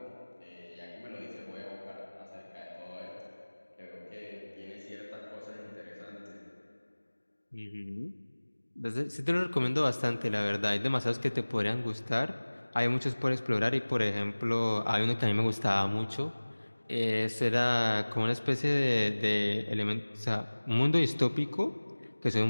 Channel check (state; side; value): inverted; both; correlation -1.00